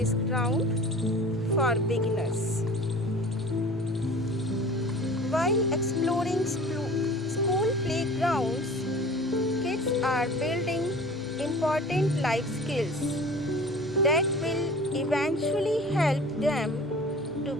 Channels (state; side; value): normal; both; correlation 0.42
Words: ground for beginners. While exploring school playgrounds, kids are building important life skills that will eventually help them to